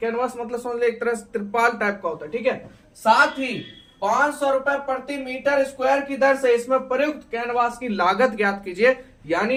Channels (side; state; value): both; identical; correlation 1.00